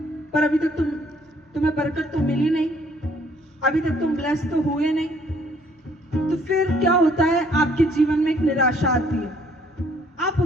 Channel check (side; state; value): both; normal; correlation 0.63